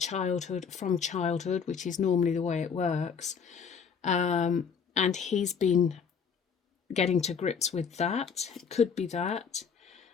from childhood, which is normally the way it works, and he's been getting to grips with that. It could be that.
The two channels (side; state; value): right; quieter; 6.5 dB